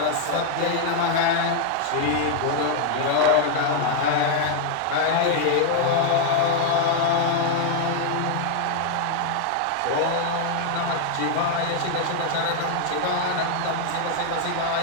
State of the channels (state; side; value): different; both; correlation 0.00